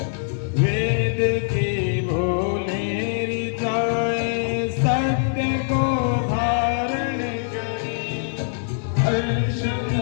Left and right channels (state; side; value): silent; right; digital silence